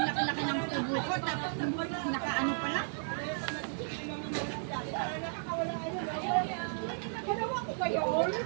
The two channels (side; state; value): left; silent; digital silence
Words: laki-laki ng tubo ko, tapos nakaano pala. Ginawa ko ba yun?